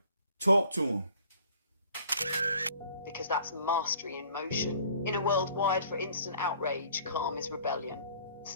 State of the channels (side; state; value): both; inverted; correlation -0.54